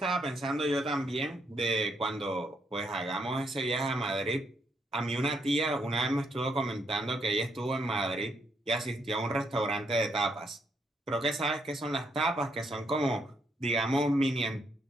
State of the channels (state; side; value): normal; both; correlation 0.75